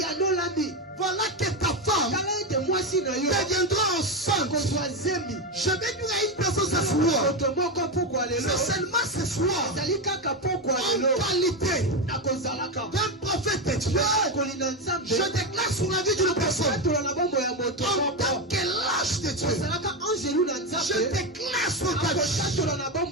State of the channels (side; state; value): both; normal; correlation 0.11